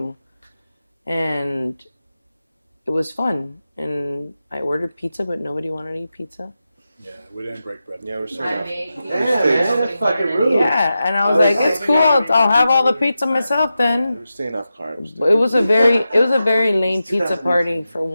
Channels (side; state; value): both; inverted; correlation -0.91